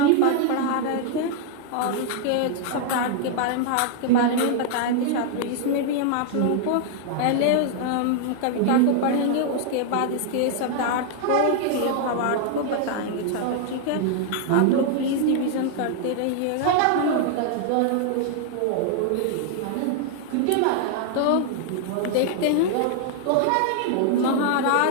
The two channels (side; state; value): both; different; correlation -0.01